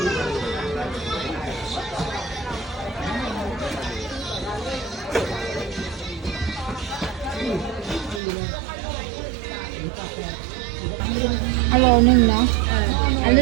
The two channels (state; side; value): drops out; left; at 8.2 s